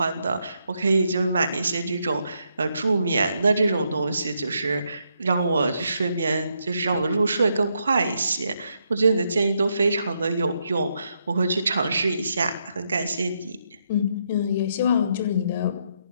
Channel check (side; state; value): both; inverted; correlation -0.79